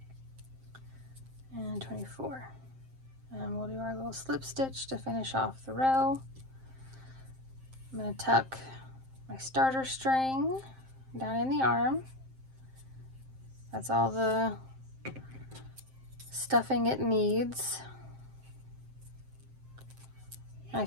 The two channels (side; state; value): left; late; 7.6 ms